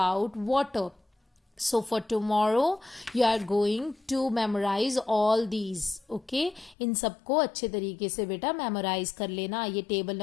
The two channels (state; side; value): drops out; right; at 6.8 s